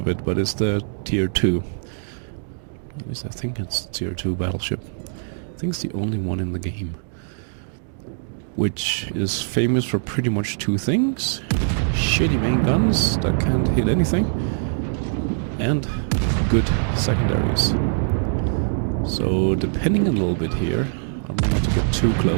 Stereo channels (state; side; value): silent; left; digital silence